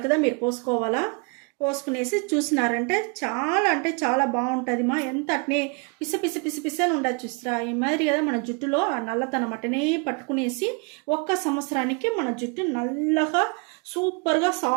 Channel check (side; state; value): left; quieter; 33.6 dB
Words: మీరు పోసుకోవాలా. పోసుకునేసి చూసినారంటే చాలా అంటే చాలా బాగుంటుంది మా. ఎంత అట్నే పిస పిస పిస పిస అని ఉండదు చూస్తారా. ఈ మాదిరి కదా మన జుట్టులో ఆ నల్లతనం అట్టనే పట్టుకునేసి 1 సంవత్సరానికి మన జుట్టు నల్లగా సూపర్గా